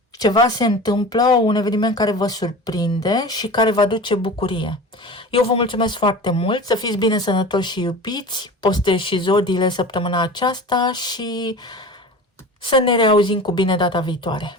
Ceva se întâmplă, un eveniment care vă surprinde și care vă aduce bucurie. Eu vă mulțumesc foarte mult, să fiți bine sănătoși și iubiți, postez și zodiile săptămâna aceasta și să ne reauzim cu bine data viitoare.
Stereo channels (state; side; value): normal; both; correlation 0.35